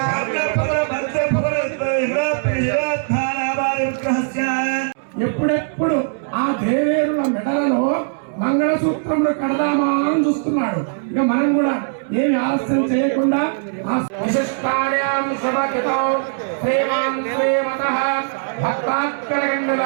ఎప్పుడెప్పుడు ఆ దేవేరుల మెడలలో మంగళసూత్రములు కడదామా అని చూస్తున్నాడు. ఇక మనం కూడా ఏమి ఆలస్యం చేయకుండా ఆ విశిష్టాయాం శివకితో శ్రీమాన్ శ్రీమతః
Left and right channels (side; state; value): left; silent; digital silence